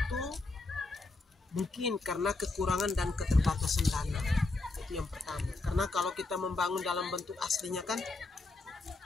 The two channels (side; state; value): right; quieter; 3.3 dB